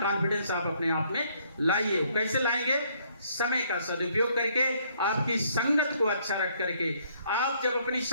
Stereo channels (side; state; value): both; inverted; correlation -0.66